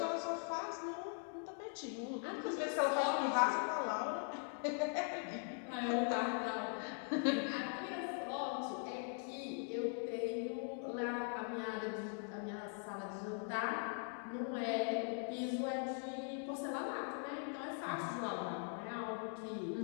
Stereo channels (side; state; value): right; silent; 50 dB below the other